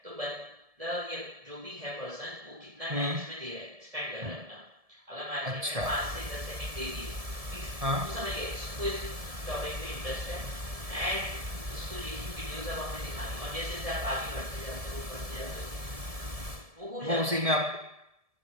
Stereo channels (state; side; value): late; left; 1.7 ms